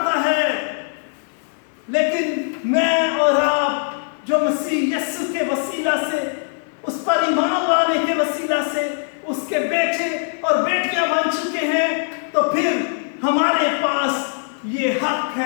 ہے. لیکن میں اور آپ جو مسیح یسوع کے وسیلہ سے اس پر ایمان चुके हैं तो फिर हमारे पास ये हक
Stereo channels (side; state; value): right; silent; digital silence